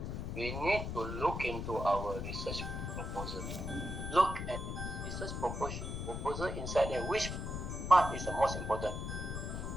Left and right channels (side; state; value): left; noise; rumble, 4 dB below the sound